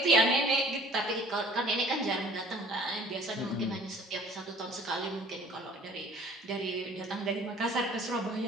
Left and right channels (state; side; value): normal; both; correlation 0.51